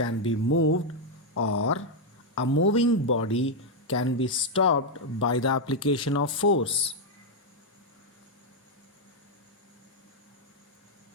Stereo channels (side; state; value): both; normal; correlation 0.00